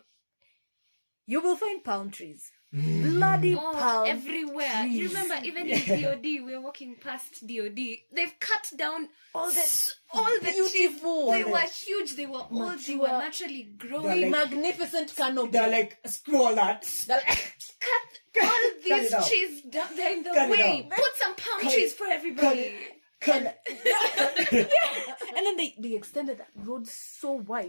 you will find palm trees. Bloody palm everywhere. trees. You remember, even in DOD, we were walking past DOD. They've cut down all the beautiful. trees. They were huge. They were old. They were naturally growing. Like, magnificent canopy. They're like, screw all that. Cut all these it out. trees down. They're in the Cut it way. out. Put some palm trees for everybody. And then they extended that road so wide.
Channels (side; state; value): both; inverted; correlation -1.00